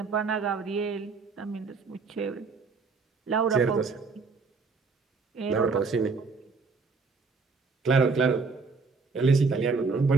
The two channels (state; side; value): quieter; left; 4.5 dB